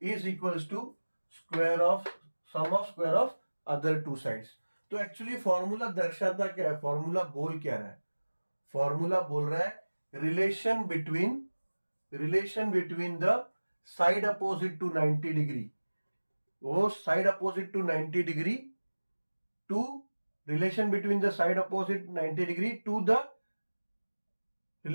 is equals to square of sum of square of other two sides. तो एक्चुअली फॉर्मूला दर्शाता क्या है? फॉर्मूला बोल क्या रहा है? फॉर्मूला बोल रहा है relation between the side opposite to 90 degree, वो side opposite to 90 degree to relation between the side opposite 90 degree to the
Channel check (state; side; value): inverted; both; correlation -1.00